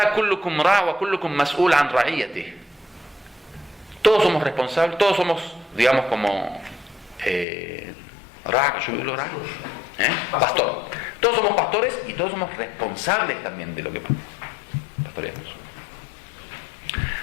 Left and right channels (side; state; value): right; drops out; at 7.5 s